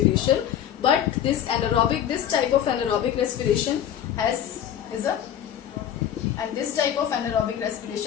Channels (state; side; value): quieter; right; 10.1 dB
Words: But this type of anaerobic respiration this type of anaerobic